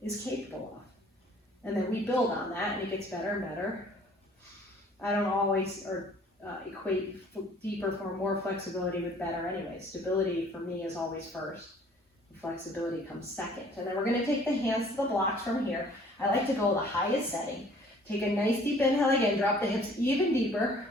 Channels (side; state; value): both; normal; correlation 0.55